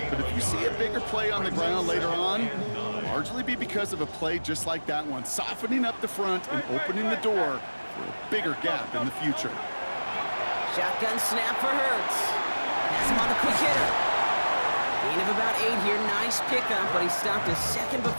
but if you see a bigger play on the ground later on, it'll largely be because of a play just like that one, softening up the front and opening the door for a bigger gap in the future. Shotgun snap for Hurts. Has him on the quick hitter. Gain of about 8 here. Nice pickup, but he stopped a second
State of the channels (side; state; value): both; inverted; correlation -1.00